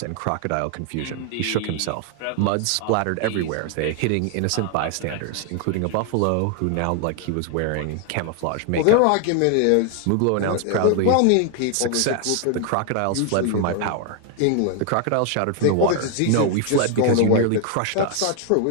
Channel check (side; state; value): both; different; correlation 0.00